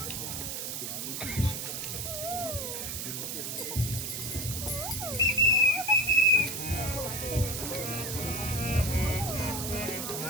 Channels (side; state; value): right; noise; hiss, 4 dB below the sound